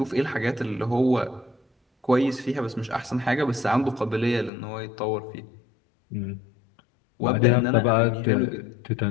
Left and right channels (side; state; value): right; drops out; at 4.5 s